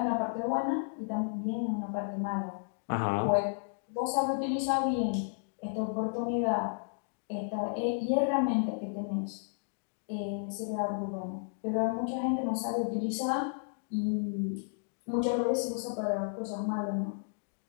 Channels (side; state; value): right; silent; digital silence